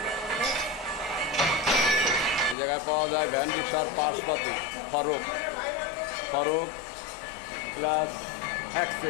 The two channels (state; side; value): drops out; right; at 2.6 s